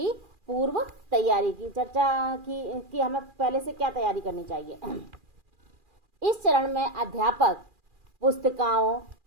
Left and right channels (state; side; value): late; left; 2.4 ms